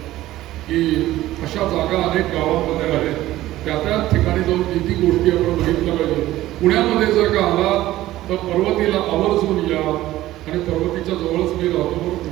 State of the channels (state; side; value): quieter; left; 15.4 dB